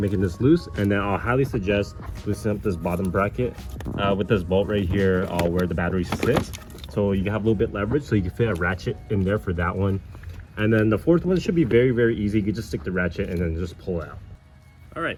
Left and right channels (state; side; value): identical; both; correlation 1.00